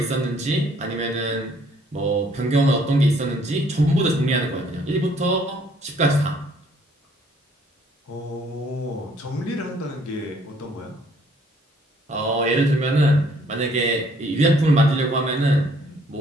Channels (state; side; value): normal; both; correlation 0.62